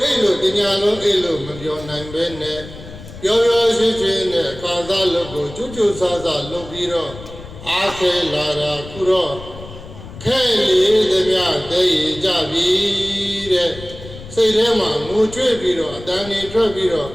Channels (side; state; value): left; noise; rumble, 15 dB below the sound